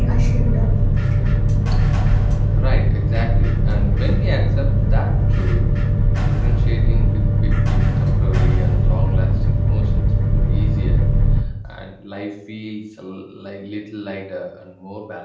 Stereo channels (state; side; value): identical; both; correlation 1.00